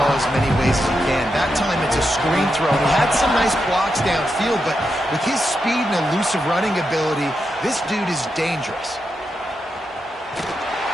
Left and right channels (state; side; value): normal; both; correlation 0.86